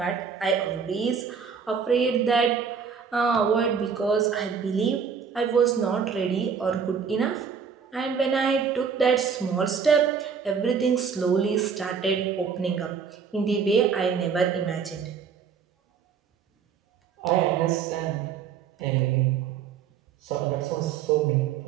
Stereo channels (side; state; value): left; quieter; 6.5 dB